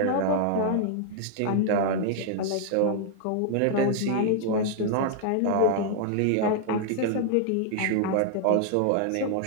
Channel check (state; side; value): different; both; correlation 0.00